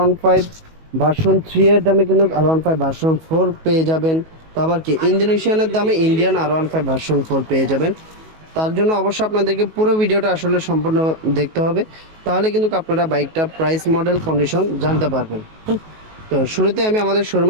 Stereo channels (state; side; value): late; left; 19 ms